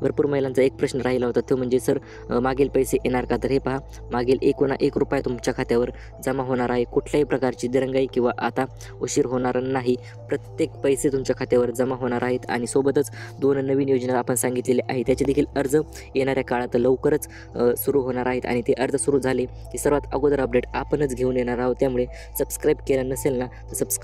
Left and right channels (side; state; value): both; identical; correlation 1.00